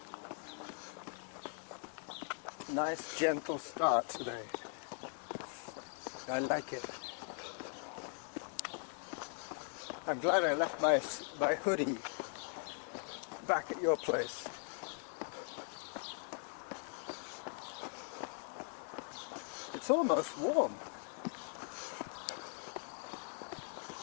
Nice, gentle start today. I like it. I'm glad I left my hoodie back at your place. It's almost warm.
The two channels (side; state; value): right; silent; 51 dB below the other